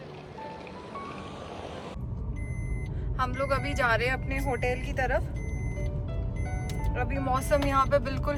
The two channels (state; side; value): identical; both; correlation 1.00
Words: हम लोग अभी जा रहे हैं अपने होटल की तरफ। अभी मौसम यहाँ पे बिल्कुल,